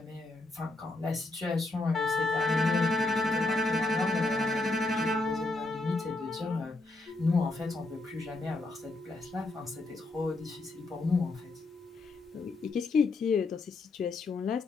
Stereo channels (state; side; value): quieter; right; 3.0 dB